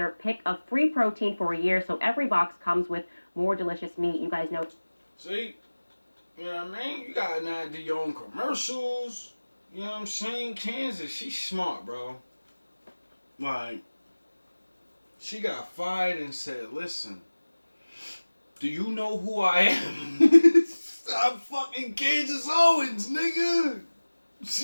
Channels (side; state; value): both; inverted; correlation -1.00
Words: pick of free protein for a year, so every box comes with more delicious meat. You guys know. See? You know what I mean? You got an idea your own commercials. You know what I'm saying? Kansas, she's smart, bro. Like, she got fired and said, listen, do you know who I am? I'm fucking Candace Owens, nigga.